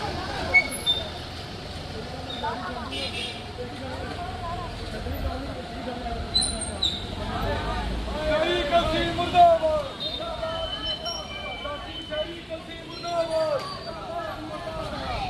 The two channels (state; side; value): identical; both; correlation 1.00